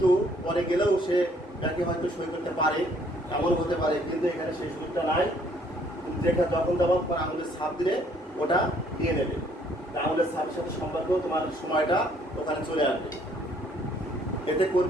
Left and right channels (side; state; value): both; normal; correlation 0.63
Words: পরে গেলেও সে ব্যাংকে হয়তো সই করতে পারে, এমন হতে পারে। কিন্তু এখানে সেই সুযোগটা নাই। যেখানে যখন যাবার পর আঙুলের ছাপ দিলে ওটা দিয়ে নেবে। আঙুলের ছাপের সাথে সম্পর্ক তোমার সময়টা ওখানে চলে আসবে। এতে